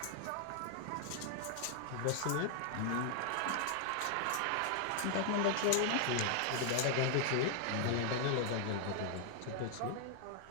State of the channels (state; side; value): different; both; correlation 0.00